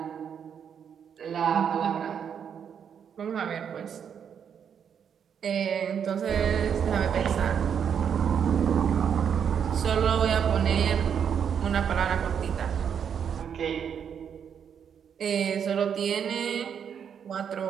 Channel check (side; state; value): left; quieter; 7.8 dB